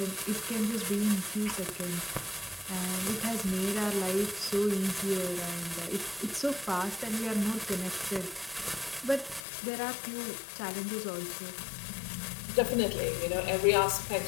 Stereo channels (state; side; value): drops out; right; at 9.4 s